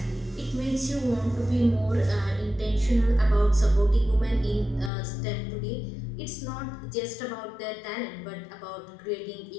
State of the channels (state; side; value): drops out; right; at 4.9 s